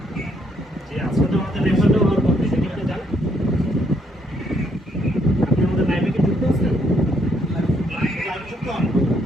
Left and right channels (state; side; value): normal; both; correlation 0.71